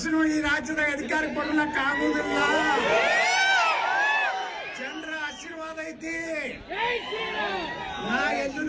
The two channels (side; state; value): both; identical; correlation 1.00